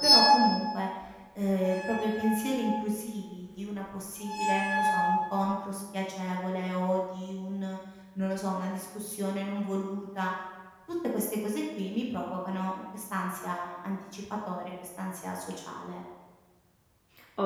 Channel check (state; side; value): identical; both; correlation 1.00